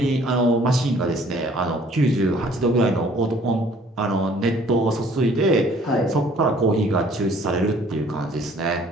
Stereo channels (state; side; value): normal; both; correlation 0.56